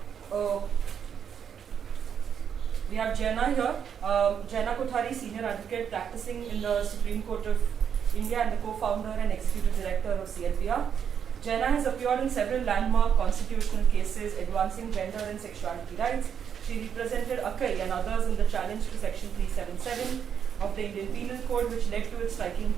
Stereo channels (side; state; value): left; quieter; 7.9 dB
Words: Jena here. Jena Kothari, senior advocate practicing in the Supreme Court of India and the co-founder and executive director of CLPR. Jena has appeared in several landmark constitutional cases advancing gender and sexuality rights. She represented Akai and others in the challenge to Section 377 of the Indian Penal Code, which led to its striking